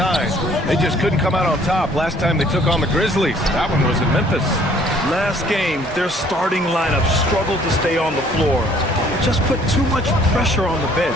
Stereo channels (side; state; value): both; normal; correlation 0.58